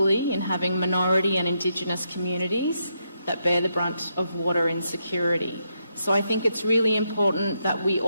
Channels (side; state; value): both; inverted; correlation -0.81